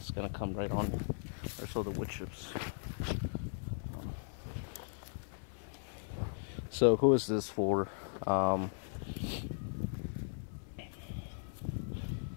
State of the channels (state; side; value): silent; right; 53 dB below the other